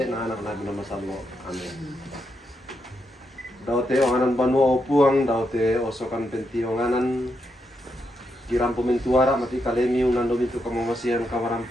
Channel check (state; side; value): normal; both; correlation 0.82